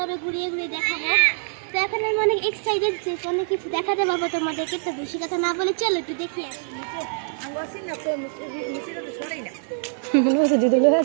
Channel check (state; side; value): silent; left; 62 dB below the other